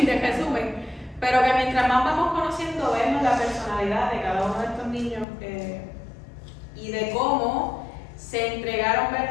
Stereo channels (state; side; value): drops out; right; at 5.2 s